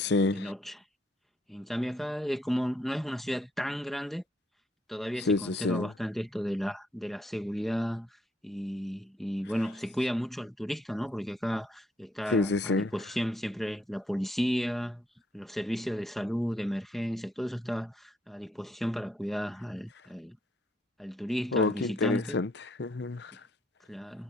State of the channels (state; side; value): normal; both; correlation 0.71